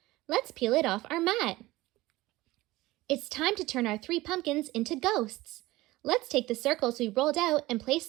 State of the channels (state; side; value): quieter; left; 18.6 dB